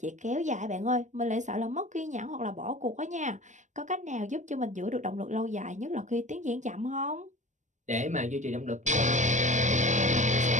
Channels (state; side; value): late; left; 0.35 ms